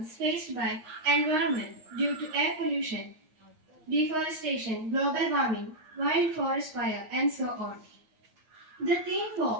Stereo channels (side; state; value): left; late; 9.6 ms